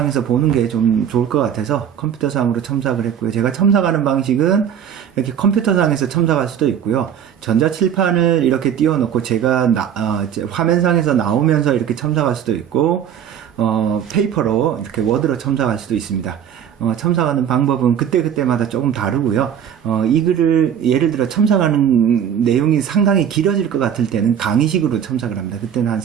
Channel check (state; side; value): quieter; left; 8.9 dB